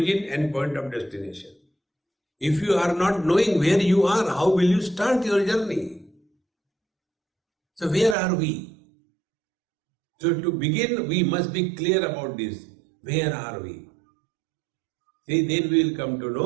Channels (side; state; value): left; drops out; at 8.2 s